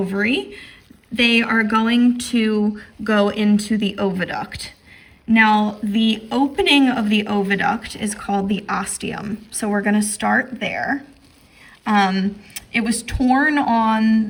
they are going to go into the oviduct. Now, the opening of the oviduct is called the ostium. So we're going to start there. It was torn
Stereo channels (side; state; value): both; identical; correlation 1.00